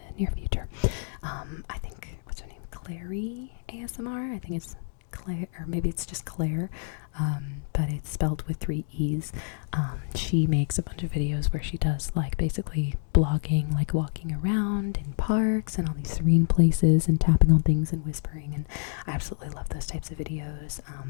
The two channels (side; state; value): right; silent; 59 dB below the other